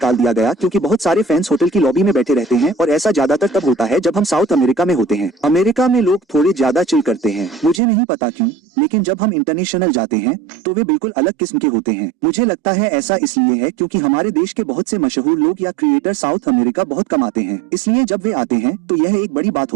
दिया गया क्योंकि बहुत सारे फैंस होटल की लॉबी में बैठे रहते हैं, और ऐसा ज्यादातर तब होता है जब हम साउथ अमेरिका में होते हैं। अमेरिका में लोग थोड़े ज्यादा चिल करते हैं, मुझे नहीं पता क्यों, लेकिन जब हम इंटरनेशनल जाते हैं तो वे बिल्कुल अलग किस्म के होते हैं। मुझे लगता है ऐसा इसलिए है क्योंकि हमारे देश के बहुत से मशहूर लोग या क्रिएटर साउथ अमेरिका बहुत कमाते हैं, इसलिए जब वे आते हैं तो यह एक बड़ी बात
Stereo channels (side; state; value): left; drops out; at 7.8 s